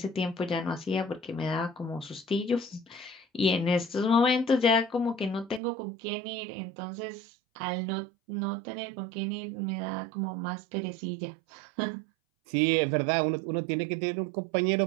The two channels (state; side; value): drops out; left; at 5.6 s